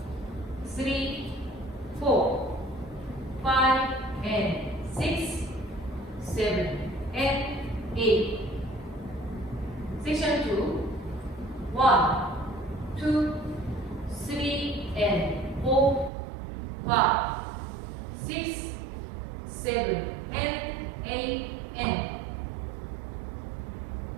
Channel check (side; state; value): left; drops out; at 16.1 s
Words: 3, 4, 5, and 6, 7, and 8. Section 2, 1, 2, 3, and 4, 5, 6, 7, and 8, and